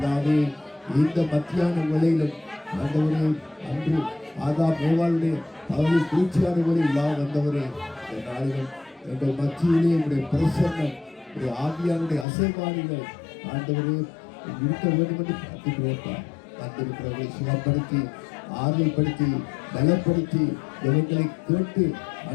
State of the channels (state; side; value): drops out; right; at 12.2 s